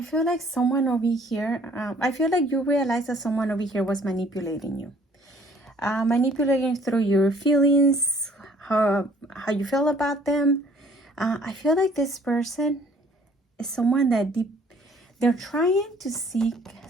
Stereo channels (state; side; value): normal; both; correlation 0.57